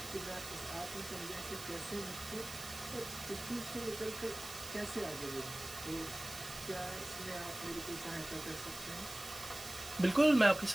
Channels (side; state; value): right; noise; hiss, 12 dB below the sound